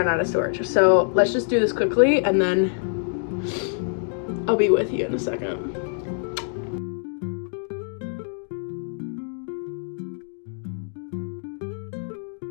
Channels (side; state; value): right; silent; digital silence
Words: out of storage. So let's just do this quickly and then I'll be with you in a second.